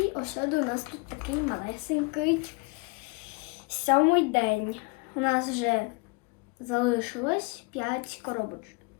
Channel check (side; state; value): right; quieter; 29.0 dB